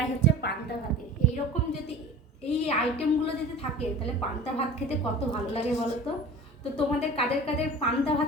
হচ্ছে পান্তা ভাতে। এইরকম যদি এই আইটেমগুলো যদি থাকে তাহলে পান্তা ভাত খেতে কত ভালো লাগে বলো তো। তো তোমাদের কাদের কাদের পান্তা ভাত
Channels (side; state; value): both; normal; correlation 0.39